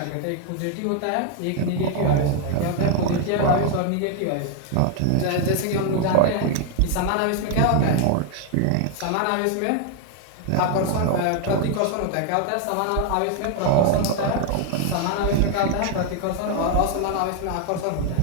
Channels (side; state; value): both; different; correlation 0.00